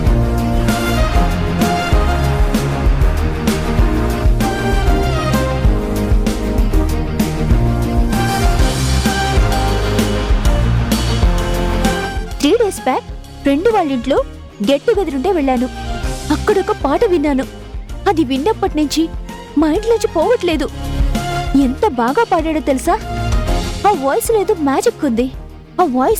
బ్యాక్ ఫ్రెండ్ వాళ్ళ ఇంట్లో గెట్ టుగెదర్ ఉంటే వెళ్ళాను. అక్కడొక పాట విన్నాను. అది విన్నప్పటి నుంచి మైండ్ నుంచి పోవట్లేదు. ఎంత బాగా పాడాడో తెలుసా? ఆ వాయిస్ ఏదో మ్యాజిక్ ఉంది. ఆ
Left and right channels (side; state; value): both; identical; correlation 1.00